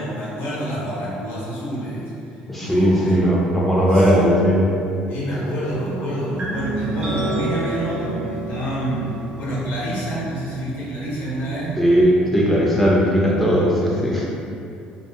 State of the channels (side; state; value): both; normal; correlation 0.67